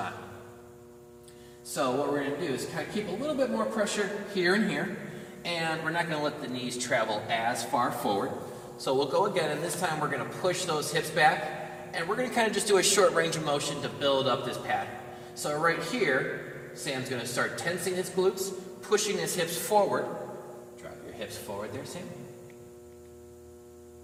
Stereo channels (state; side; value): identical; both; correlation 1.00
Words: So what we're going to do is kind of keep a little bit more pressure here and here. And we're not going to let the knees travel as far forward. So we'll go again, and this time we're going to push those hips back. And we're going to kind of just do a short range of motion to build up this pattern. So right here, Sam's going to start tensing his glutes, pushing his hips forward. Drive your hips forward there, Sam.